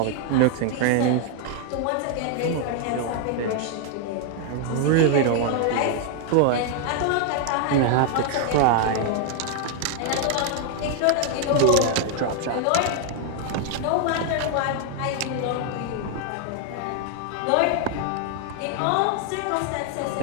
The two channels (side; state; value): both; different; correlation 0.00